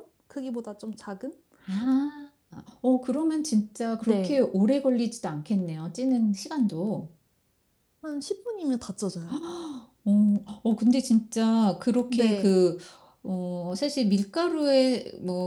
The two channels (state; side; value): identical; both; correlation 1.00